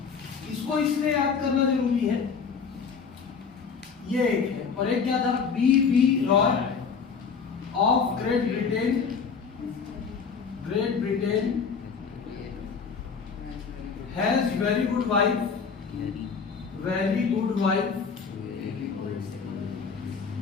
इसको इसलिए याद करना जरूरी है, ये एक है, और एक क्या था, B.B. Roy of great Britain has very good wife wearing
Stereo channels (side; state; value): right; quieter; 5.8 dB